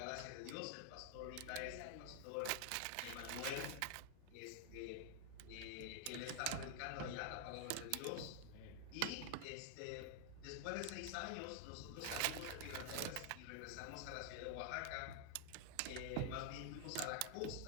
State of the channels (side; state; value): both; different; correlation 0.00